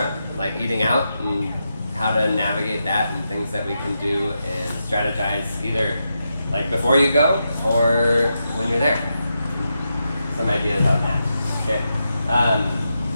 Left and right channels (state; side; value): inverted; both; correlation -0.86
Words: like eating out and how to navigate that and things that we can do and strategize either like before you go or when you're there. Some ideas on that. Okay.